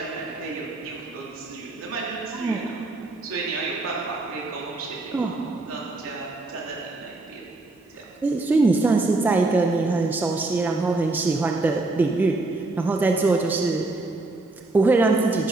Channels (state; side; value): quieter; left; 3.1 dB